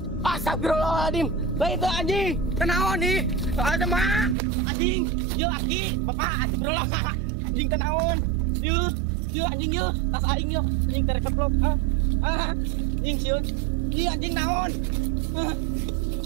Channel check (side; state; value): left; drops out; at 4.4 s